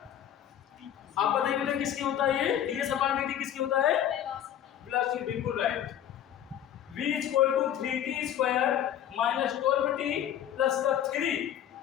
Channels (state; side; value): quieter; right; 10.5 dB